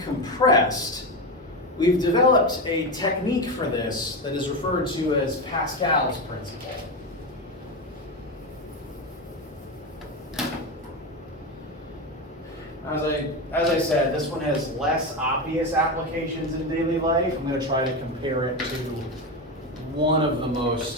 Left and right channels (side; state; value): both; normal; correlation 0.17